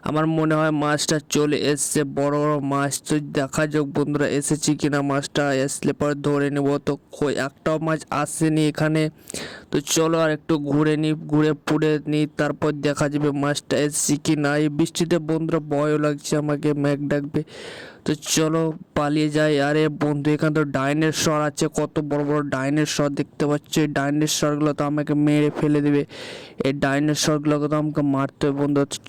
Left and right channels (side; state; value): both; identical; correlation 1.00